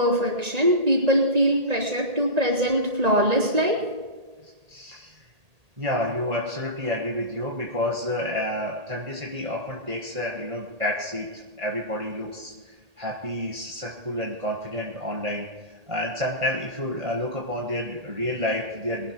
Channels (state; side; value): late; left; 1.8 ms